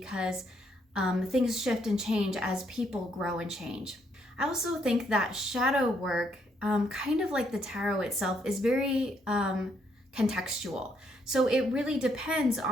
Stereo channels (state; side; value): normal; both; correlation 0.72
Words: things shift and change as people grow and change. I also think that shadow work, kind of like the tarot itself, is very contextual. So it really depends